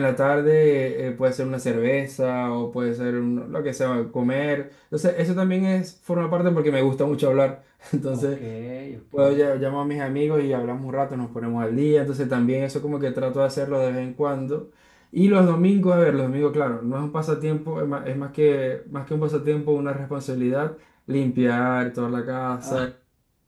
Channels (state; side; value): identical; both; correlation 1.00